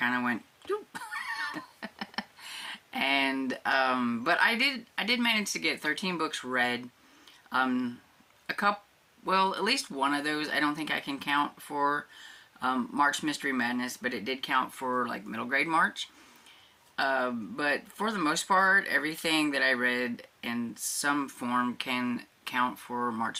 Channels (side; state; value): both; identical; correlation 1.00